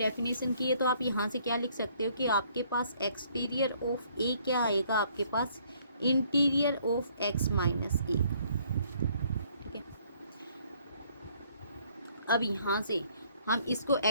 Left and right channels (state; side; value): inverted; both; correlation -0.64